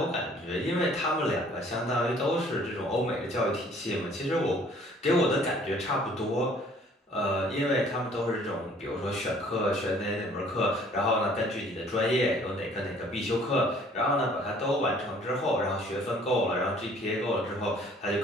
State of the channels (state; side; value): normal; both; correlation 0.56